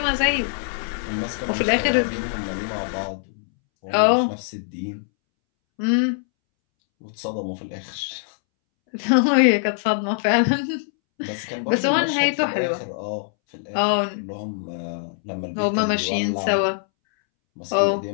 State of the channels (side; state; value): right; silent; 63 dB below the other